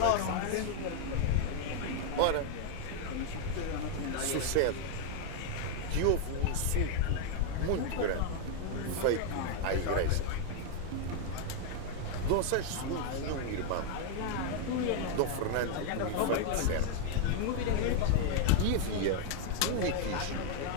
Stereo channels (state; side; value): different; both; correlation 0.00